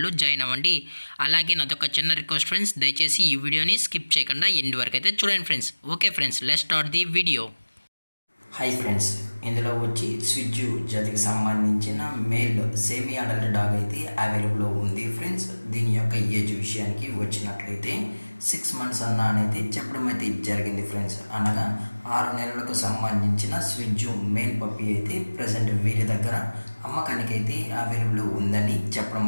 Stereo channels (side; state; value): both; inverted; correlation -1.00